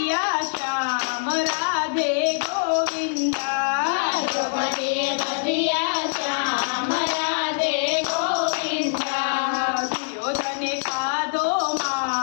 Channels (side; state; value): right; silent; digital silence